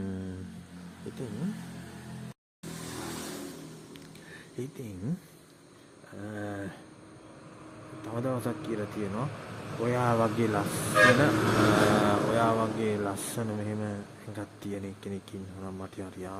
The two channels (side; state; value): both; identical; correlation 1.00